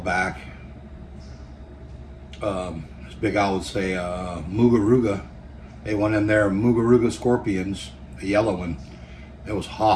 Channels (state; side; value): identical; both; correlation 1.00